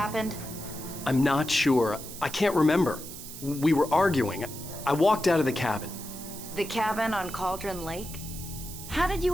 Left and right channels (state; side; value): noise; right; hiss, 12 dB below the sound